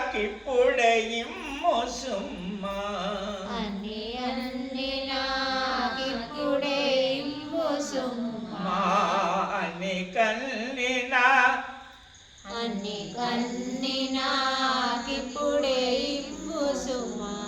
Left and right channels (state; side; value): identical; both; correlation 1.00